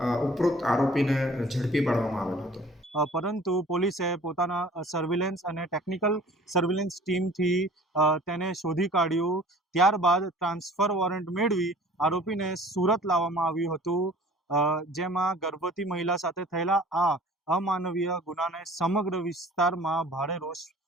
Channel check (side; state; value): both; normal; correlation 0.49